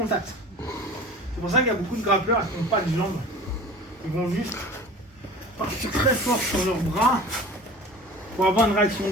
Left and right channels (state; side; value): normal; both; correlation 0.39